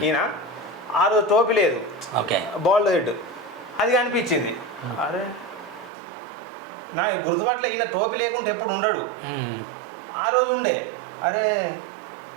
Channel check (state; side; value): drops out; left; at 5.9 s